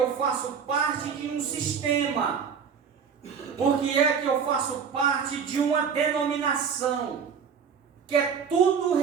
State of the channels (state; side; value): quieter; left; 6.7 dB